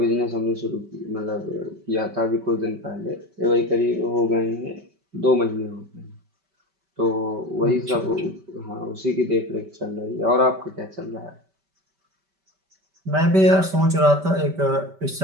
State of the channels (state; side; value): late; left; 5.2 ms